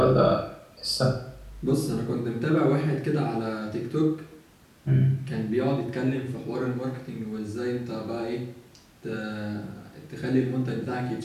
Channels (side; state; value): both; identical; correlation 1.00